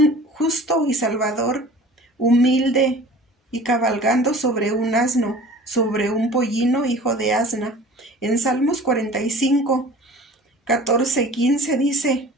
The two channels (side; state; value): both; normal; correlation 0.43